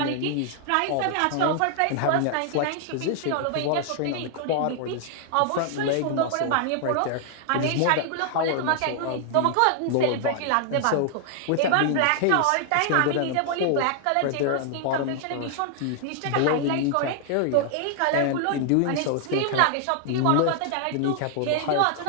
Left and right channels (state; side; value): different; both; correlation 0.00